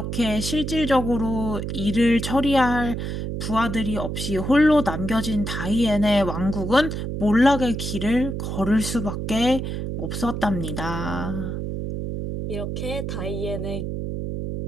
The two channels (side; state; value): right; noise; hum, 4 dB below the sound